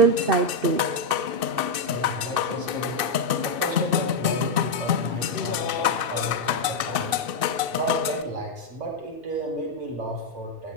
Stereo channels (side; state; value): left; late; 2.6 ms